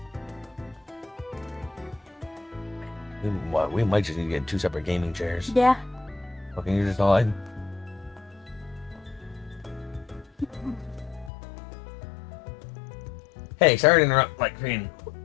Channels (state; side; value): drops out; right; at 11.3 s